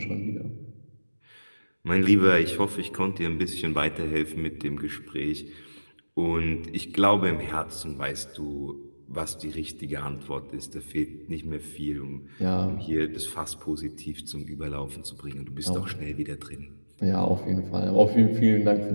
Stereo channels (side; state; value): both; inverted; correlation -1.00